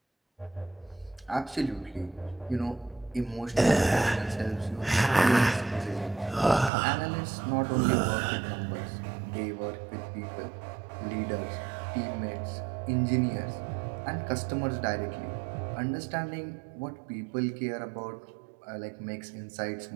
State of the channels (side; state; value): left; drops out; at 6.7 s